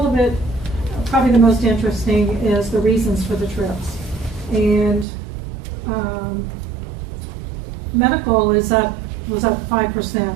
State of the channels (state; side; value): drops out; left; at 5.1 s